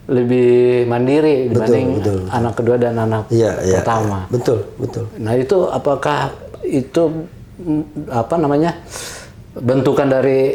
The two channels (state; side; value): identical; both; correlation 1.00